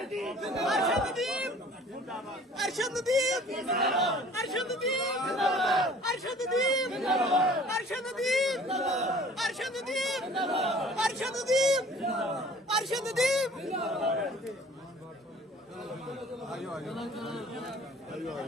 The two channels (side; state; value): both; normal; correlation 0.50